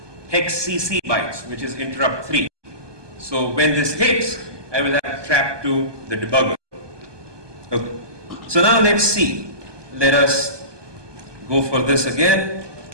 hex CC bytes, which is interrupt 3. So when this hits, I will have trap to the debugger. Okay. So now let's see. Let us go for this again.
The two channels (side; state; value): left; late; 1.2 ms